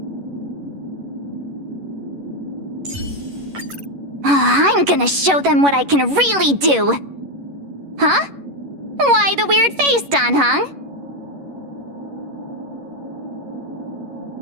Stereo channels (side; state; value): left; late; 11 ms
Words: I'm gonna show them what I can really do. Huh? Why the weird face, Don Hung?